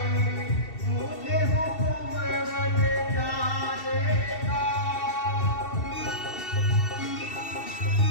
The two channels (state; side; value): late; right; 2.7 ms